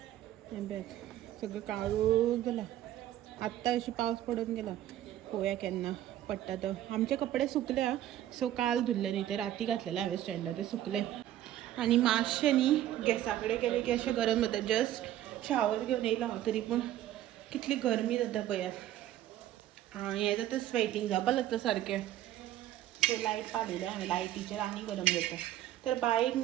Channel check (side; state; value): left; quieter; 12.8 dB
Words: हें पळय सगळें काळोख जाला आत्तां अशी पावस पडून गेला पळोवया केन्ना पडटा तो आमचे कपडे सुकले सो काल धुल्ले न्ही ते राती घातलेले हांवें स्टँडार ते सुकले आनी मातशें न्ही गॅसा कडेन गेलें की अशें गरम जाता जस्ट शावर घेवन येयला हांव तरी पूण कितली गरमी जाता पळयात हें जाता स्वेटींग जावपाक लागता सारकें सो लायट पावयलें हांवें लायटीचेर आनी गरम जाता तर बायक